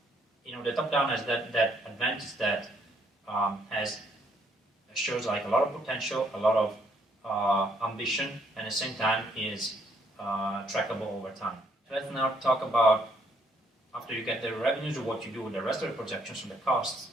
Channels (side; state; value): both; normal; correlation 0.69